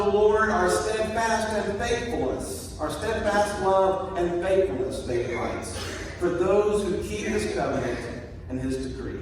the Lord are steadfast and faithfulness, are steadfast love and faithfulness, David writes, for those who keep his covenant and his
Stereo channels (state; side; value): identical; both; correlation 1.00